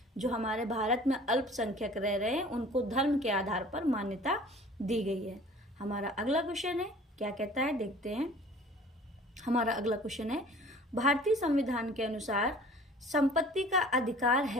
जो हमारे भारत में अल्पसंख्यक रह रहे हैं उनको धर्म के आधार पर मान्यता दी गई है। हमारा अगला क्वेश्चन है क्या कहता है, देखते हैं। हमारा अगला क्वेश्चन है भारतीय संविधान के अनुसार संपत्ति का अधिकार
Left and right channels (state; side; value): normal; both; correlation 0.47